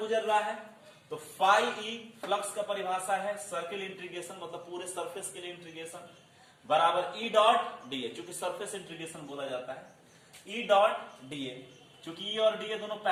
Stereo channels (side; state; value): both; identical; correlation 1.00